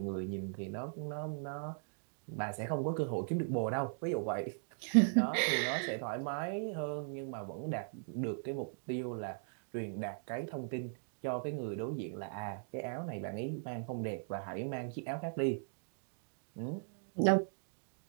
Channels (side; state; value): left; silent; digital silence